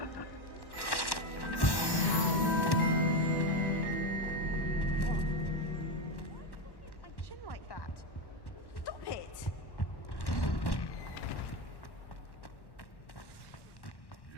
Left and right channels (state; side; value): late; right; 1.1 ms